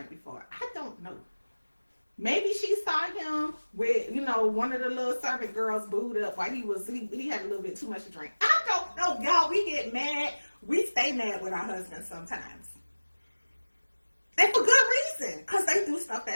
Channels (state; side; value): inverted; both; correlation -1.00